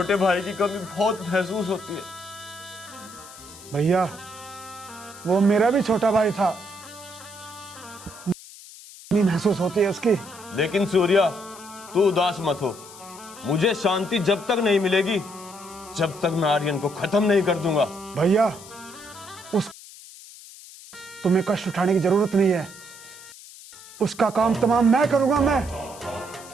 भाई की कमी बहुत महसूस होती है। भैया, वो मेरा भी छोटा भाई था, नहीं महसूस होती है उसकी। लेकिन सूर्या, तू उदास मत हो। मुझे शांति जब तक नहीं मिलेगी, जब तक मैं आर्यन को खत्म नहीं कर दूंगा। भैया, उस तुम्हें कष्ट उठाने की जरूरत नहीं है, उसका काम तमाम मैं करूंगा। मैं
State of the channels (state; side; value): noise; left; hiss, 18 dB below the sound